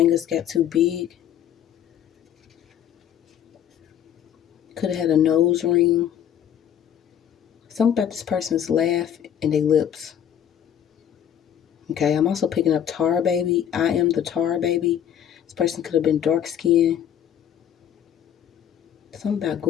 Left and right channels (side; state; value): right; quieter; 9.6 dB